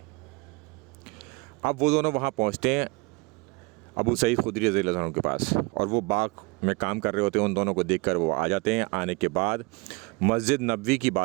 अब वो दोनों वहाँ पहुँचते हैं अबू सईद खुदरी रज़ी अल्लाह ताला अन्हु के पास, और वो बाग में काम कर रहे होते हैं। उन दोनों को देखकर वो आ जाते हैं। आने के बाद मस्जिद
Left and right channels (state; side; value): quieter; left; 27.2 dB